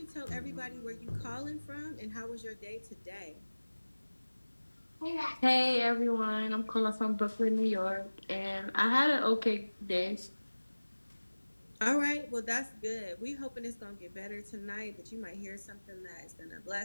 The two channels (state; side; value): inverted; both; correlation -1.00